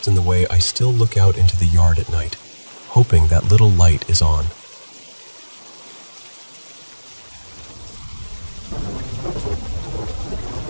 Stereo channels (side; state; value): both; inverted; correlation -1.00